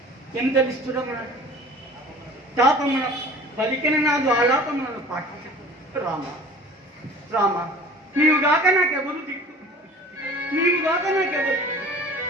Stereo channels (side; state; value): both; normal; correlation 0.44